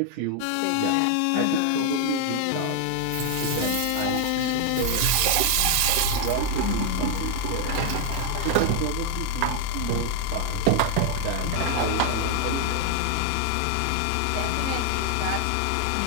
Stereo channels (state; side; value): different; both; correlation 0.01